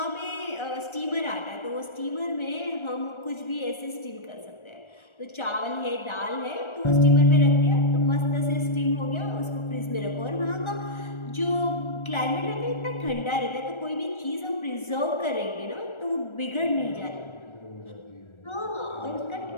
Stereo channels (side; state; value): right; late; 1.4 ms